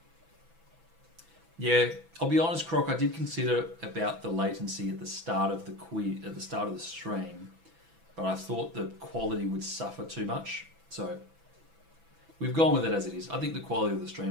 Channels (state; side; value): late; left; 6.0 ms